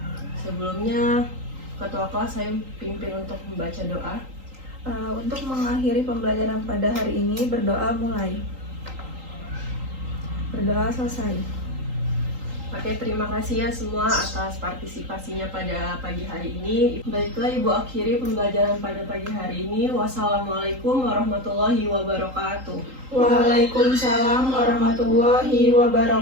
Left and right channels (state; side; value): late; left; 3.8 ms